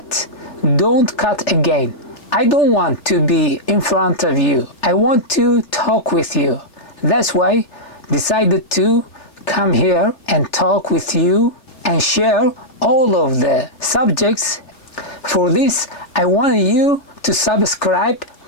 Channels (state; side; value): late; right; 3.3 ms